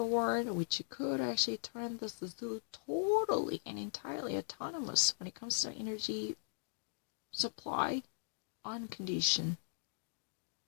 world, which could actually turn the zoo totally and entirely autonomous when it comes to energy supply on condition.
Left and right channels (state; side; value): silent; right; digital silence